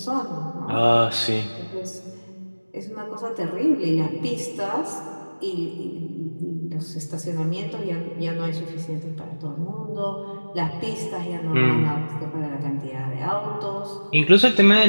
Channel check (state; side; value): inverted; both; correlation -1.00